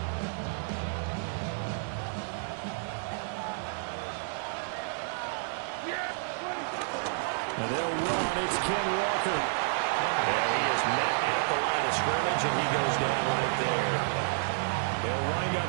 And they'll run. It's Ken Walker. And he is met at the line of scrimmage, and he goes down right there. They'll wind up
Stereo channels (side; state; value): left; silent; digital silence